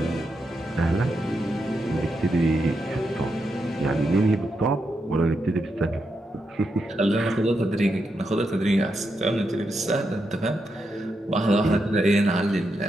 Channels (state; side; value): normal; both; correlation 0.84